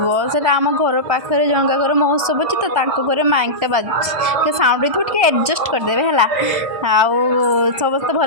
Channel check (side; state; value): left; late; 1.3 ms